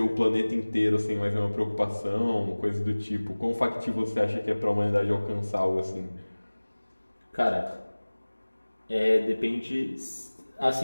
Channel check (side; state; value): both; inverted; correlation -1.00